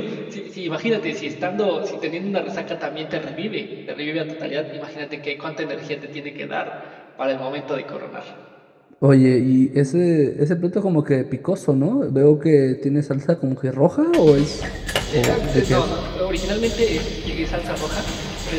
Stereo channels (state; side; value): identical; both; correlation 1.00